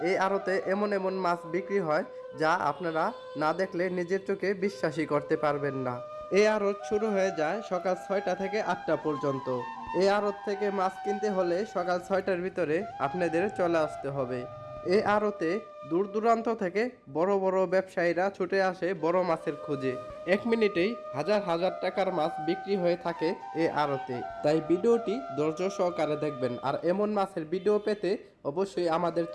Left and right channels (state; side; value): identical; both; correlation 1.00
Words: এই আড়তে এমন এমন মাছ বিক্রি হয় যা আপনারা না দেখলে নিজের চোখে বিশ্বাসই করতে পারবেন না। এই আড়ত শুরু হয়ে যায় সকাল 6টা থেকে 8টা পর্যন্ত। এই আড়ত থেকে মাছ কিনতে হলে সকাল 6টার ভিতরে আপনাদের চলে আসতে হবে। এই আড়তে দূর দূরান্ত থেকে বড় বড় ব্যবসায়ীরা ছুটে আসে বড় মাছের খোঁজে। 1 মিনিটেই হাজার হাজার টাকার মাছ বিক্রি হয়ে থাকে এই আড়তে। তাই ভিডিওটি ধৈর্য সহকারে দেখবেন। আর এমন মাছের ভিডিও পেতে অবশ্যই আমাদের